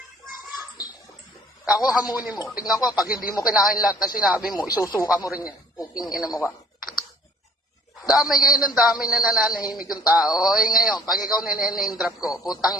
Ako hamunin mo. Tingnan ko, pag hindi mo kinain lahat ng sinabi mo, isusuka mo rin yan. Puking ina mo ka. Damay kayo ng damay na nananahimik yung tao. Ngayon, pag ikaw nine-name drop ko, putang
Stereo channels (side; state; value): both; normal; correlation 0.55